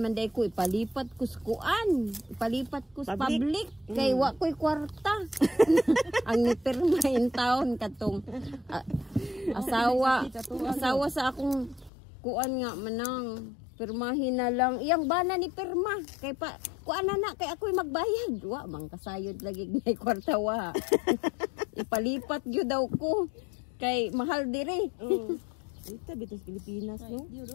man day ko ipalipat ko sa kuan, ipalipat ko sa public kay wa ko'y kwarta. Ang nipirma in town katong asawa sa akong kuan nga manang pirmahin na lang iyang bana ni pirma kay pa kuan na kay ako'y magbayad wa mang kasayod lagi ngay kwarta wa. Ipalipat gyud daw ko kay mahal diri. Ito bitos Pilipinas no.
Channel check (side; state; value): right; drops out; at 11.9 s